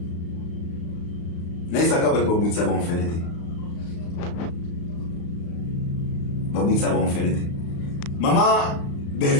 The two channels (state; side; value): late; right; 35 ms